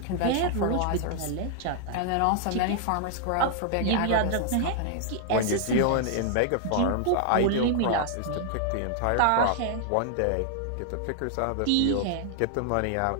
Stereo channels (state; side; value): different; both; correlation 0.00